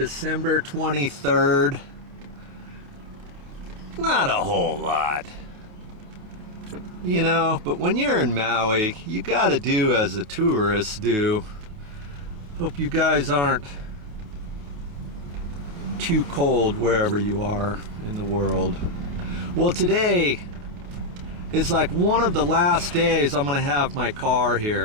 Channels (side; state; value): left; late; 28 ms